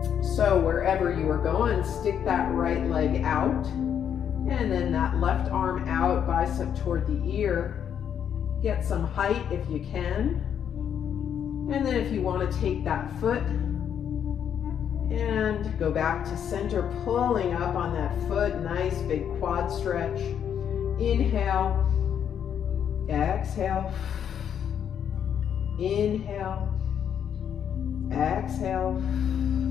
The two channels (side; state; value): right; quieter; 8.7 dB